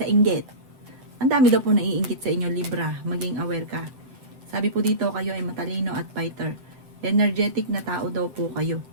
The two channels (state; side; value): late; left; 7.7 ms